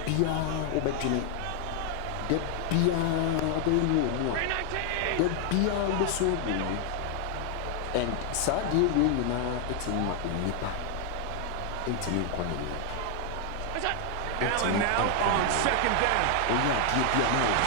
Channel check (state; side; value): different; both; correlation 0.00